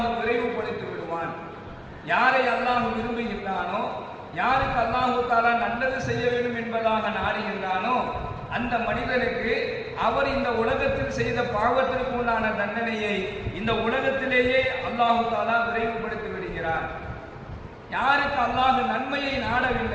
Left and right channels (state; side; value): identical; both; correlation 1.00